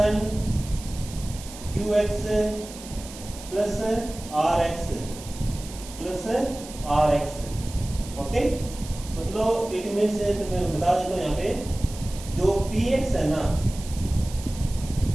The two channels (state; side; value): noise; right; hiss, 15 dB below the sound